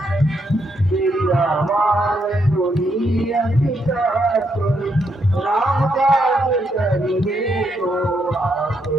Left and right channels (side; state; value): both; normal; correlation 0.77